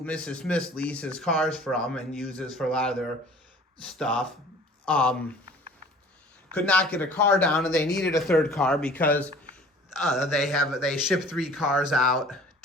Mrs. Smith leases cars from and uses for a lot of their stuff, could not get a car down, and they needed a third car because they ship 3 cars out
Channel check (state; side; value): normal; both; correlation 0.48